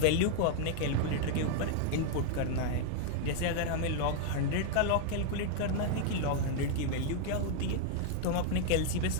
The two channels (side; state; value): both; different; correlation 0.00